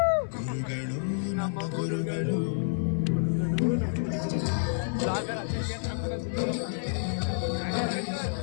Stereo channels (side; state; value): right; silent; digital silence